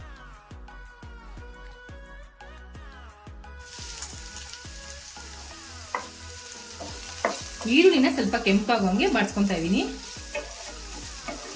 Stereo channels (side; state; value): both; identical; correlation 1.00